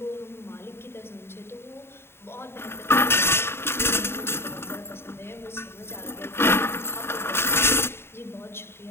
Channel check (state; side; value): late; right; 0.12 ms